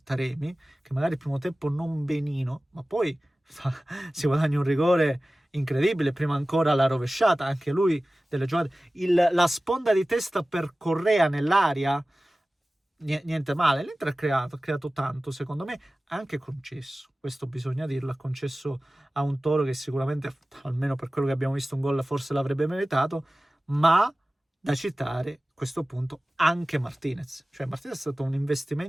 Taremi, che magari il primo tempo non benino, ma poi si guadagna un rigore incredibile, prima ancora la rovesciata, anche lui delle giocate, la sponda di testa per Correa nell'aria, niente male. L'Inter ha creato tanto, secondo me, anche concesso, questo bisogna dirlo, ha concesso a un Toro che sicuramente, almeno per quello che abbiamo visto, un gol forse l'avrebbe meritato, ma da citare a questo punto anche Martinez. Cioè Martinez è stato un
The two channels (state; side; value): normal; both; correlation 0.97